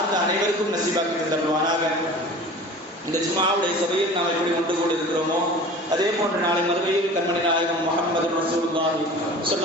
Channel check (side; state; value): both; normal; correlation 0.40